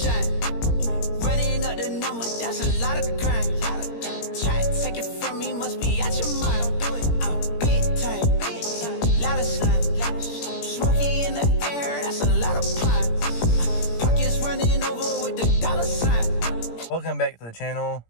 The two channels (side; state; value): right; late; 17 ms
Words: Running up the number, that's a lot of crime. Try to take it from me, must be out your mind. I'm big time. Lot of slime. Smoky in the air, that's a lot of pine. Pockets running over with the dollar sign. Welcome back to the channel,